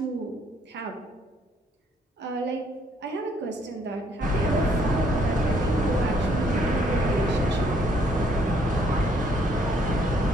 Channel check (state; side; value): normal; both; correlation 0.66